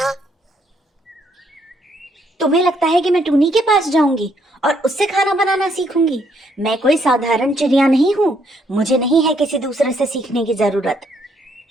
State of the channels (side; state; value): both; normal; correlation 0.71